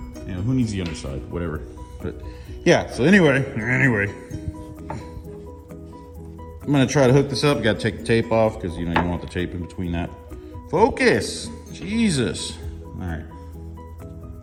You know, who needs the underside? Whatever. But yeah, so anyway, I'm gonna try to hook this up. Gotta take the tape off, because you know, you don't want the tape in between that. Focus, Jesus. All right.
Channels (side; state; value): both; identical; correlation 1.00